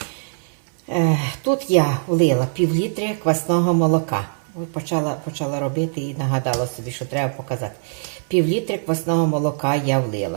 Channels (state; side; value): silent; left; 64 dB below the other